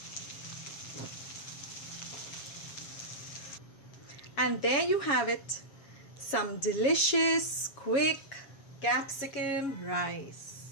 And there you have it, some delicious, quick capsicum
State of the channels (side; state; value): right; late; 7.2 ms